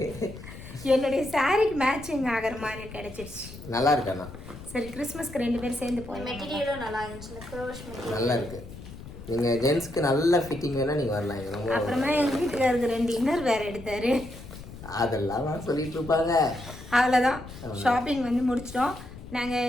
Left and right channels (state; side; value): noise; left; rumble, 14 dB below the sound